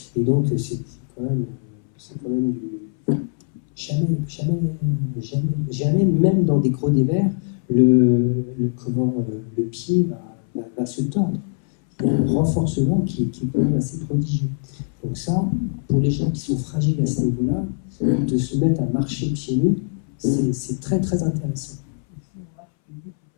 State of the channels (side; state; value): right; silent; 63 dB below the other